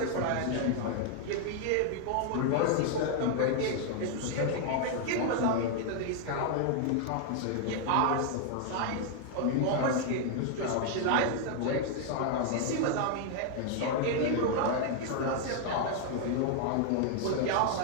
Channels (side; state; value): both; different; correlation 0.00